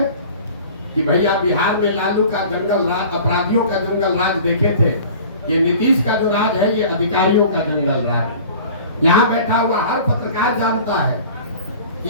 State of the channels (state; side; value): inverted; both; correlation -0.44